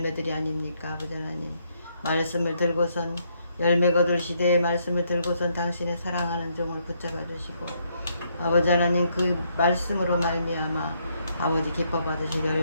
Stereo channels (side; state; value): both; inverted; correlation -0.74